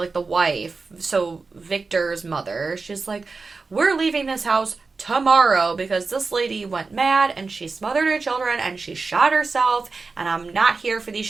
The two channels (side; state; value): left; quieter; 4.2 dB